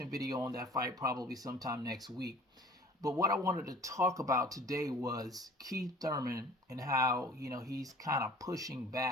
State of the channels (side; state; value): both; normal; correlation 0.48